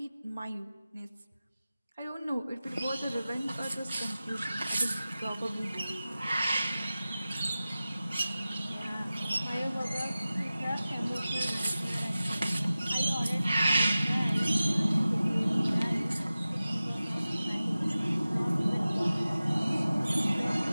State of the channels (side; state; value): both; inverted; correlation -0.96